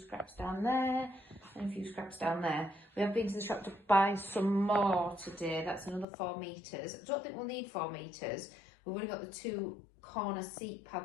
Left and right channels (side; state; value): right; drops out; at 6.1 s